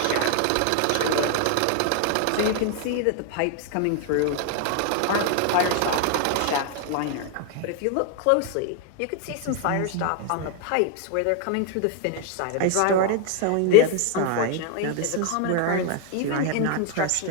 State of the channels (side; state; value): both; different; correlation 0.00